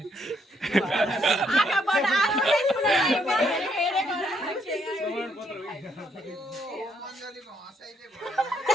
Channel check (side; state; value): both; normal; correlation 0.72